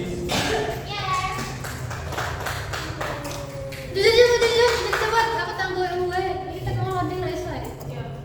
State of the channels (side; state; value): both; identical; correlation 1.00